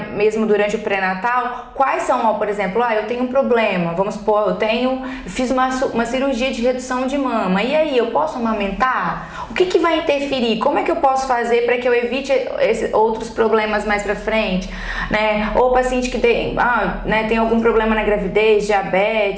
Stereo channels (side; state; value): both; identical; correlation 1.00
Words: mesmo durante o pré-natal, quais são, por exemplo, eu tenho um problema, vamos supor, fiz uma cirurgia de redução de mama, e aí, eu posso amamentar? O que vai interferir? Como é que eu posso fazer para que eu evite outros problemas mais pra frente, Ou paciente que tem algum problema na gravidez,